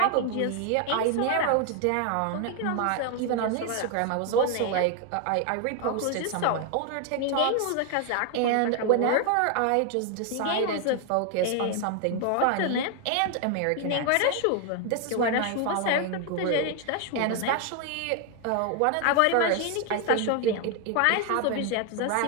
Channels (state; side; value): different; both; correlation 0.01